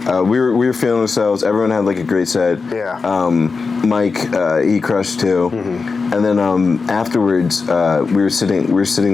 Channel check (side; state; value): right; quieter; 4.6 dB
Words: we were feeling ourselves. Everyone had like a great set. Yeah. Mike, he crushed too. Mm-hmm. And then afterwards, we were